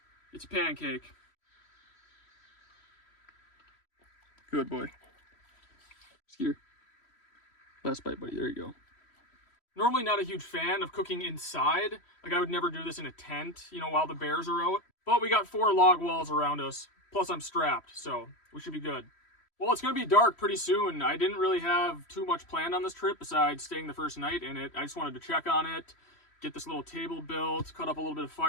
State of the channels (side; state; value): right; late; 3.1 ms